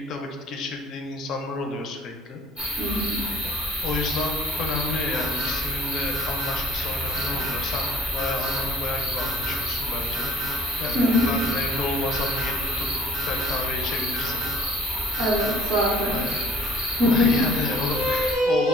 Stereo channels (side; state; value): both; normal; correlation 0.52